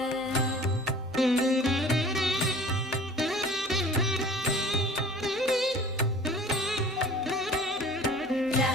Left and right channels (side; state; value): both; normal; correlation 0.46